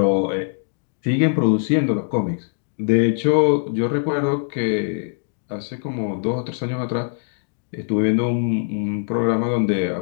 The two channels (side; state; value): right; silent; digital silence